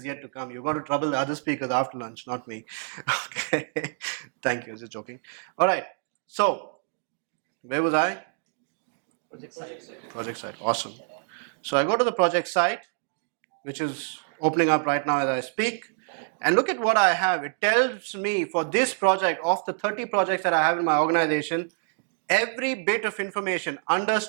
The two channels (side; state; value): left; silent; 60 dB below the other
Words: yet to come. You're going to trouble the other speakers after lunch, not me. Okay. Thank you. Just joking. All right. So, where was I? Project site. Awesome. So I go to the project site, which is opening up right now as I speak. And look at what I have. It tells me for this project, of the 30 projects that I have in my organization, every bit of information under